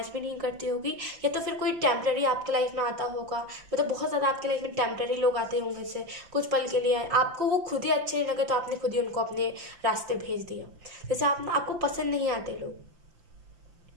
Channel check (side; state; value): left; late; 5.8 ms